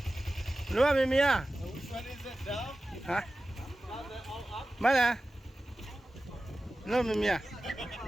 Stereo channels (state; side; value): normal; both; correlation 0.95